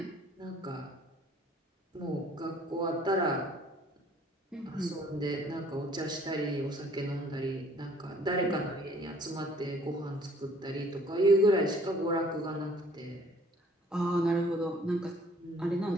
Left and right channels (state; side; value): normal; both; correlation 0.57